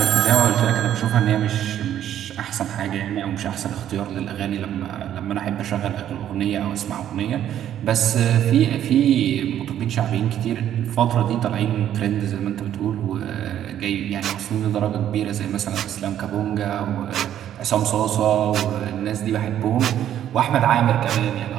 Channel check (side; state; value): left; quieter; 10.9 dB